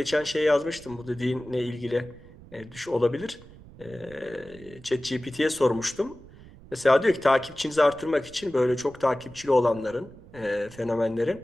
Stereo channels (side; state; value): right; noise; rumble, 20 dB below the sound